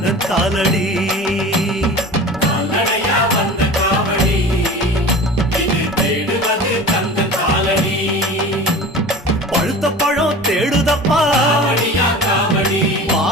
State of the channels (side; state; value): both; normal; correlation 0.37